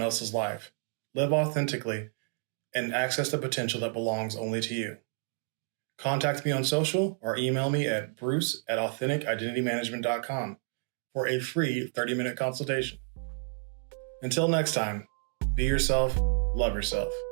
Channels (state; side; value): silent; left; 58 dB below the other